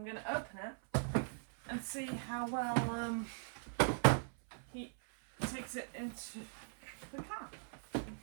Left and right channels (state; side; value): silent; left; 51 dB below the other